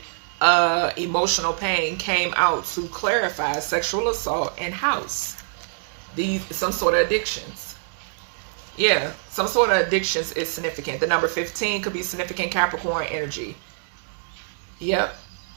emotional pain came out to clarify sexual assault and house. Some sort of addictions. Yeah, some sort of addictions is significant. The number 15 could be significant Capricorn energy. Yep.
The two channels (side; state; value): left; silent; digital silence